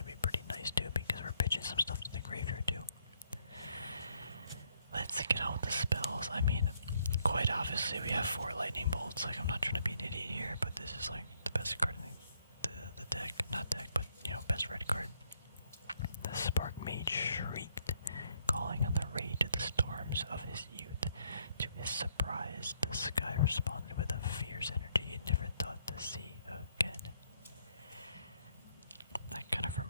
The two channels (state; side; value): inverted; both; correlation -0.71